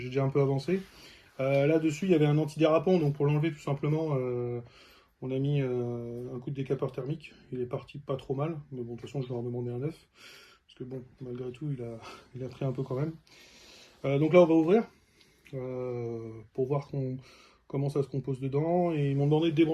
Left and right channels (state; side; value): identical; both; correlation 1.00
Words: déjà un peu avancé. Là-dessus, il y avait un antidérapant, donc pour l'enlever tout simplement, on a mis un coup de décapeur thermique. Il est parti pas trop mal, mais bon, de toute façon, je vais en demander un neuf. Parce que bon, malgré tout, il a pris un peu quand même. Donc là, on va ouvrir pour voir comment ça se compose dedans. Et ils m'ont demandé de